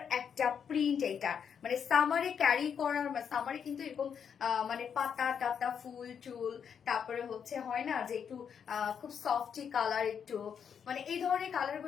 একটা প্রিন্ট এটা, মানে সামারে ক্যারি করার, সামারে কিন্তু এরকম মানে পাতা টাতা ফুল টুল, তারপরে হচ্ছে হয় না যে একটু খুব সফটি কালার, একটু মানে এই ধরনের কালার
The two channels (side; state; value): right; quieter; 7.4 dB